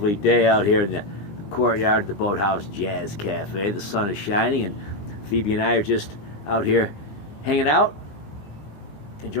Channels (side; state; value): right; late; 20 ms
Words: day out here in the courtyard of the Boathouse Jazz Cafe. The sun is shining, and Phoebe and I are just out here hanging out,